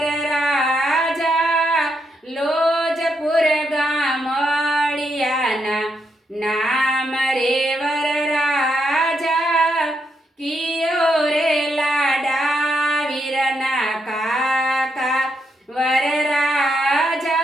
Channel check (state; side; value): normal; both; correlation 0.80